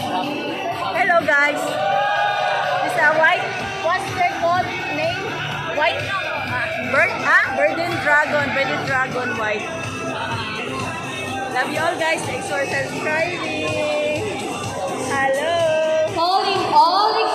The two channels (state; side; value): identical; both; correlation 1.00